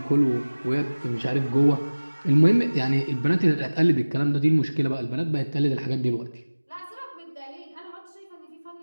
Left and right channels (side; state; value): both; inverted; correlation -1.00